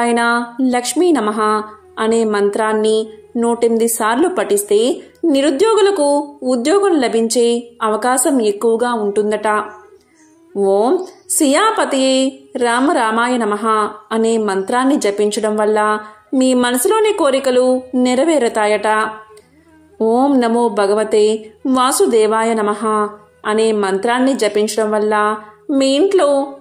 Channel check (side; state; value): both; identical; correlation 1.00